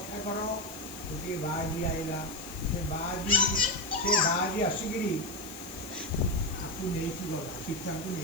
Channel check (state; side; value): noise; left; hiss, 14 dB below the sound